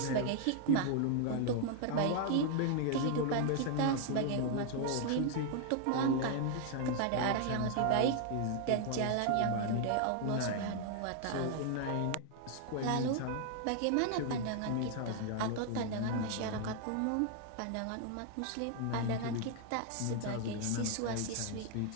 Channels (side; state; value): both; different; correlation 0.00